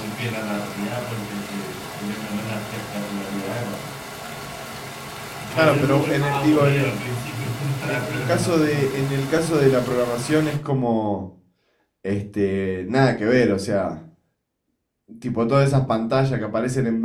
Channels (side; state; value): both; identical; correlation 1.00